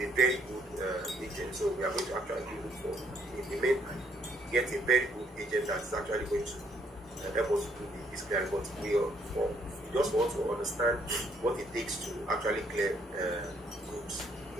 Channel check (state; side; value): normal; both; correlation 0.68